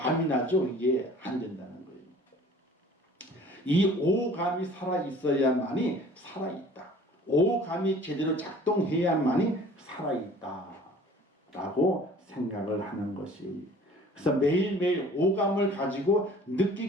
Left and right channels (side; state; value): both; normal; correlation 0.49